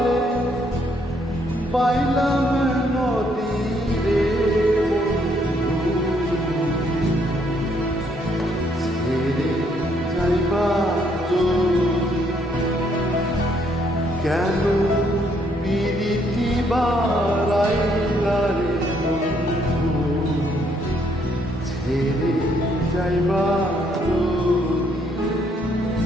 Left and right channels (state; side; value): normal; both; correlation 0.70